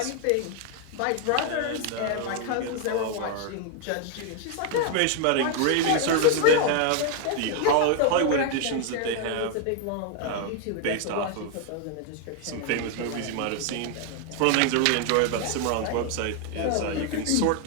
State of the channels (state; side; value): different; both; correlation 0.00